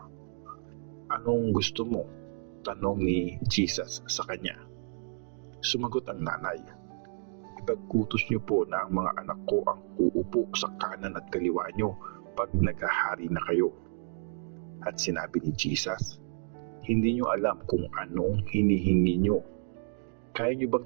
"Anong gusto mo?" tanong ni Jesus sa kanya. Sumagot ang nanay, "Ipag-utos niyo po na ang mga anak ko ang uupo sa kanan at kaliwa niyo pag naghahari na kayo." At sinabi ni Jesus, "Hindi niyo alam kung anong hinihingi niyo. Kaya niyo bang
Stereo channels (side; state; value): left; silent; digital silence